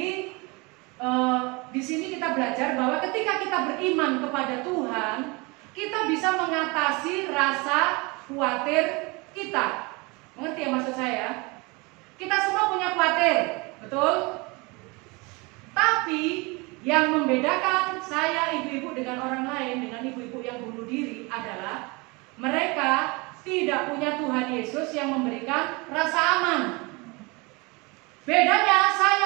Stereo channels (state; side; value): quieter; left; 27.0 dB